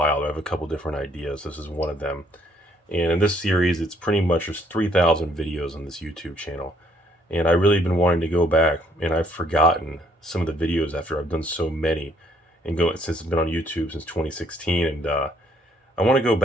I have a couple different ideas. This is one of them. And in this series, it's pretty much just 3,000 videos on this YouTube channel. And I really been wanting to go back, and I've forgotten some of the videos after I've done so many, and since it's been on YouTube since 2016. And I want to go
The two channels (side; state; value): both; normal; correlation 0.67